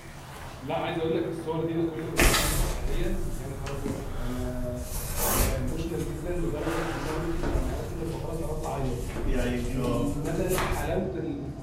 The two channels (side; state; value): both; identical; correlation 1.00